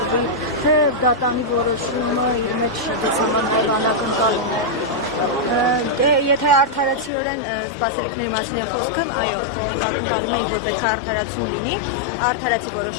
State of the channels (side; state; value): right; drops out; at 7.1 s